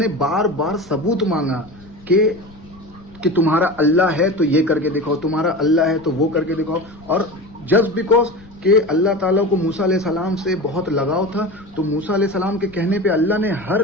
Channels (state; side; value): noise; left; rumble, 23 dB below the sound